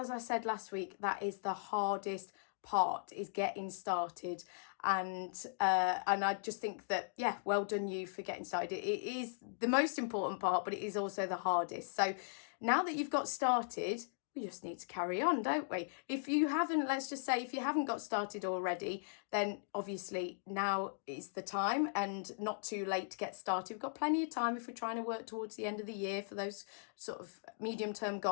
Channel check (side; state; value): right; silent; digital silence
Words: I said last week, that is the hardest part, is getting started. And I just think that, yeah, well done you for getting started. It is the most important part, but it is also the hardest. So now that you've got started, we just need to carry on, don't we? If you haven't, let's just say, if you haven't got started already, then obviously now is the time and not too late to get started. We've got plenty of time if we're trying to work towards the end of the year for those sort of medium-term